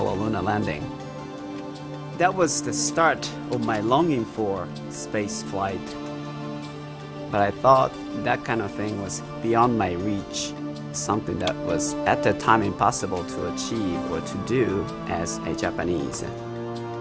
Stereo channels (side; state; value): both; identical; correlation 1.00